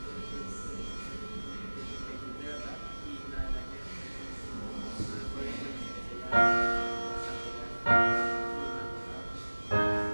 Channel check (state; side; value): inverted; both; correlation -1.00